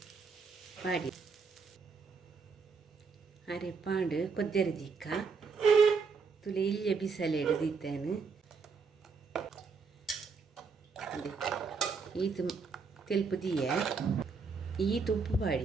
ಪಾಡಿ ಅರೆ ಪಾಂಡು ಕೊದ್ದೆರೆ ದಿಕ್ಕ ತುಲೆ ಇಲ್ಲಿಯ ಬಿಸಲೆ ಹಿಡಿದಿತ್ತೇನು ಈತು ತೆಲ್ಪು ದಿಯೆ ಈತು ಉಪ್ಪು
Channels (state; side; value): quieter; left; 5.0 dB